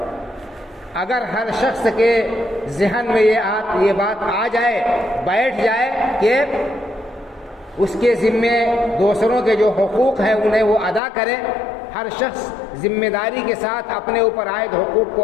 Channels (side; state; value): right; drops out; at 11.0 s